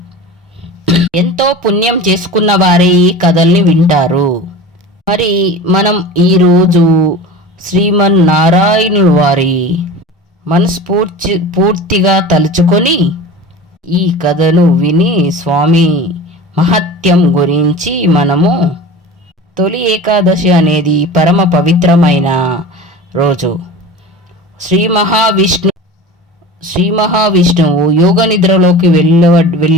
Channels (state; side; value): normal; both; correlation 0.35